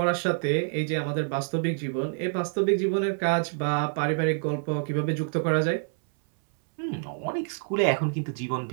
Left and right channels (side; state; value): left; silent; 60 dB below the other